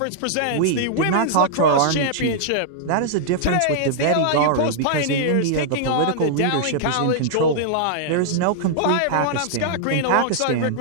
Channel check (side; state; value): both; different; correlation -0.01